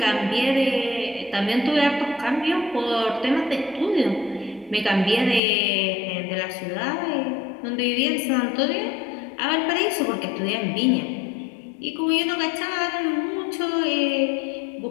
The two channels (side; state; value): right; drops out; at 5.4 s